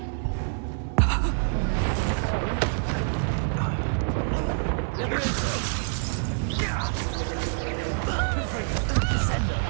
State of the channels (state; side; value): silent; left; digital silence